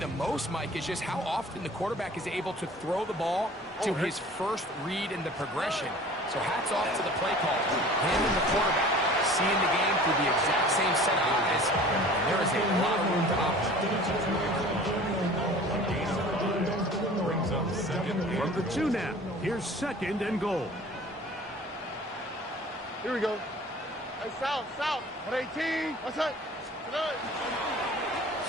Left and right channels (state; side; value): normal; both; correlation 0.45